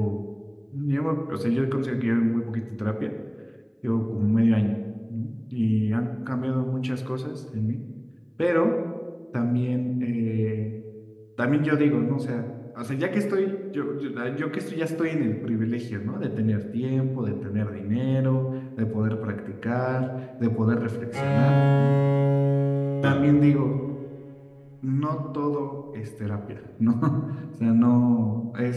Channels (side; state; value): both; identical; correlation 1.00